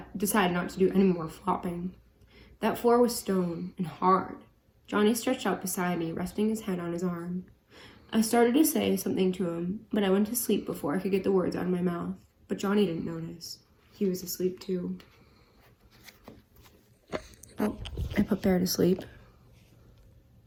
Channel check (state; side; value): identical; both; correlation 1.00